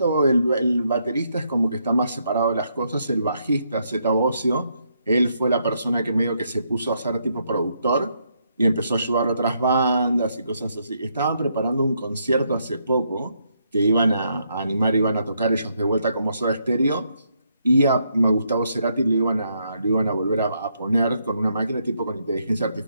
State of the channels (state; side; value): inverted; both; correlation -0.76